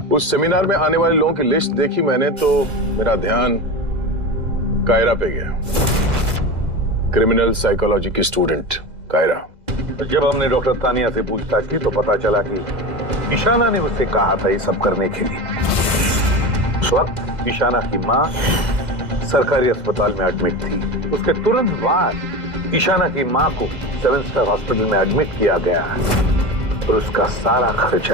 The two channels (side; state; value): left; late; 2.0 ms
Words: उस सेमिनार में आने वाले लोगों की लिस्ट देखी मैंने तो मेरा ध्यान कायरा पे गया। क्रिमिनल साइकोलॉजी की स्टूडेंट कायरा। जब हमने डॉक्टर तानिया से पूछताछ की तो पता चला कि ईशाना ने उससे कहा था ये सब करने के लिए। उस वक्त ईशाना की मां सरकारी अस्पताल में एडमिट थी। उसके तुरंत बाद ईशाना की मां को 7 स्टार हॉस्पिटल में एडमिट किया गया और उसका सारा